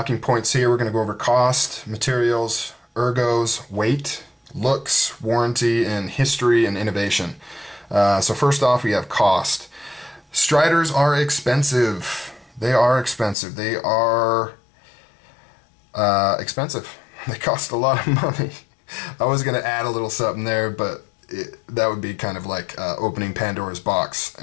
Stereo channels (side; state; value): right; drops out; at 13.4 s